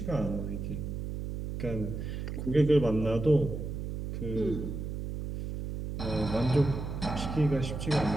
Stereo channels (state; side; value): noise; right; hum, 5 dB below the sound